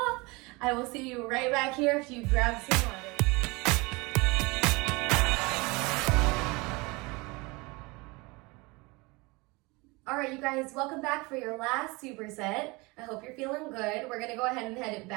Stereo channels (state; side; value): quieter; left; 25.5 dB